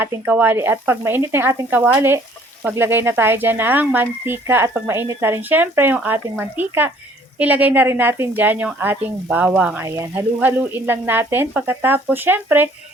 ating kawali. At pag mainit na yung ating kawali, maglagay na tayo dyan ng mantika. At pag mainit na rin syempre yung ating mantika, ilagay na rin natin dyan yung ating bawang. Ayan, halu-haluin lang natin. Pagkatapos syempre,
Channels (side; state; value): both; normal; correlation 0.58